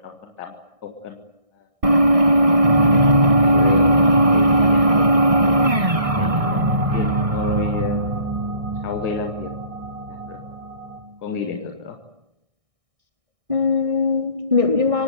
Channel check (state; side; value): late; left; 1.6 ms